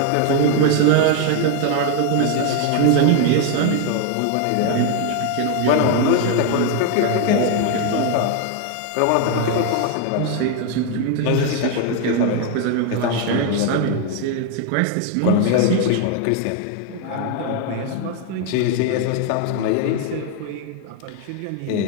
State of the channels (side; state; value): both; different; correlation 0.01